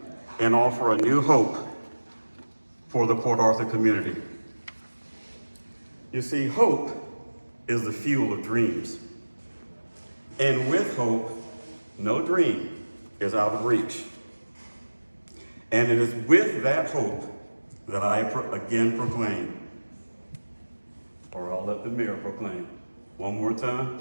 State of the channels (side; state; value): both; inverted; correlation -1.00